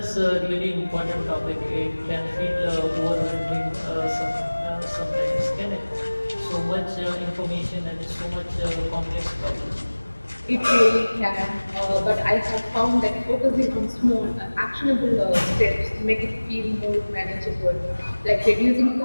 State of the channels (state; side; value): inverted; both; correlation -1.00